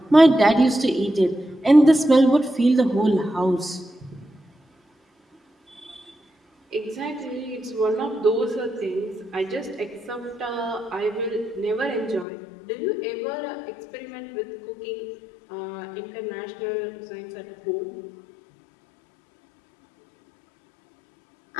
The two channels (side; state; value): right; drops out; at 12.2 s